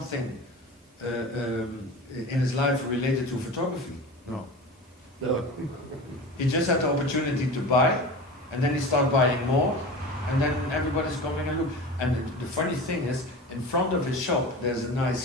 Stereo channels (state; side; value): normal; both; correlation 0.32